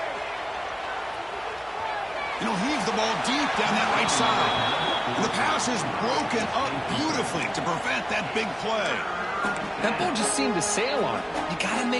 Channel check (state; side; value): identical; both; correlation 1.00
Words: You know, heaves the ball deep down that right side. And the pass is broken up beautifully to prevent that big play. That ball just seemed to sail on it. You got to